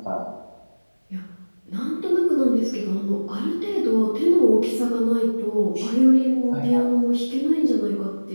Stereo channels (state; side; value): inverted; both; correlation -1.00